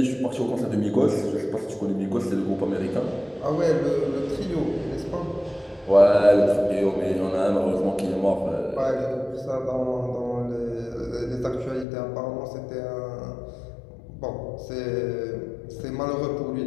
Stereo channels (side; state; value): right; drops out; at 11.9 s